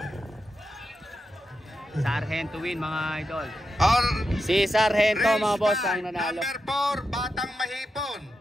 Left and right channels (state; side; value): normal; both; correlation 0.88